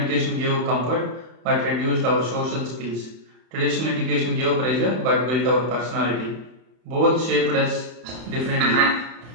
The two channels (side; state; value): left; late; 31 ms